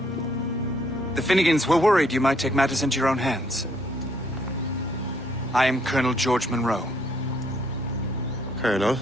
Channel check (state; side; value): normal; both; correlation 0.68